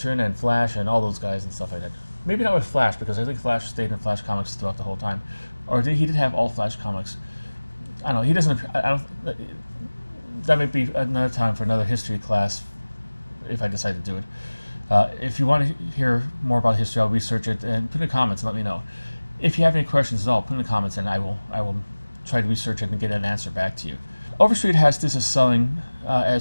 and Flash and all those guys and stuff like that. Maybe not with Flash, because I think Flash stayed in Flash comics throughout the whole time. Or he did have all Flash comics. I don't know. He doesn't. I don't. That might be another time for another history class, if I decide to do it. If you want to hear more about history, I'll research it and put in the comments and let me know. If you have any questions at all, put in the comments and I will try to research it and get an answer back to you. Overstreet has this as selling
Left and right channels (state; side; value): inverted; both; correlation -1.00